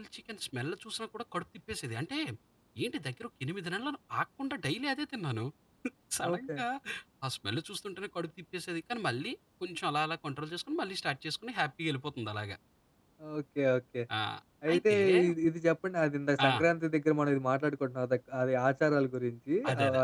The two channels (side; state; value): both; identical; correlation 1.00